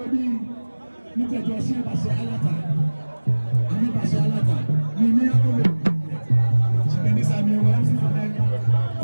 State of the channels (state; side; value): inverted; both; correlation -1.00